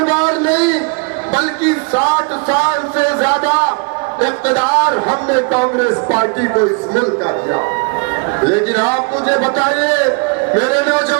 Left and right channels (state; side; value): quieter; left; 33.5 dB